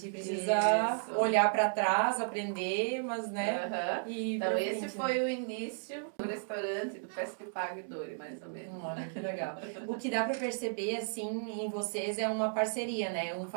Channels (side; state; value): left; silent; digital silence